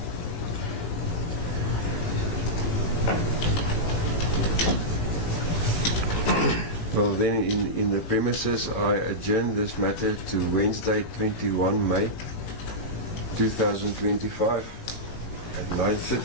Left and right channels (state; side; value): late; right; 18 ms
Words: Well then, in the premises, I adjourn this matter to Wednesday 21 May 2025 at